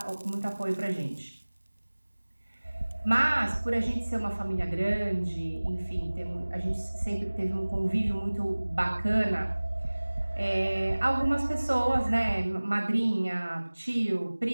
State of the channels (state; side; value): inverted; both; correlation -1.00